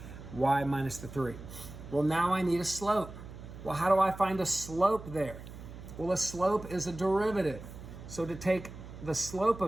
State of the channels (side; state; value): right; noise; hum, 13 dB below the sound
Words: y minus the 3. Well, now I need a slope. Well, how do I find a slope there? Well, a slope is a derivative. So to take the slope